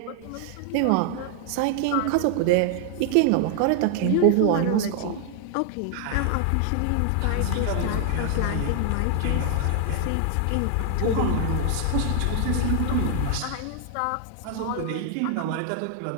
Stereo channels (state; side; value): different; both; correlation 0.00